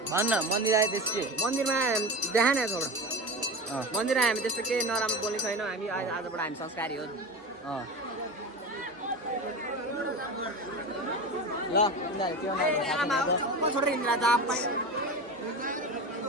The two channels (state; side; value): normal; both; correlation 0.27